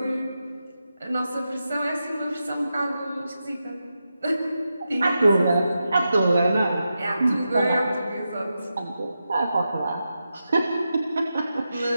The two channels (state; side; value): inverted; both; correlation -0.89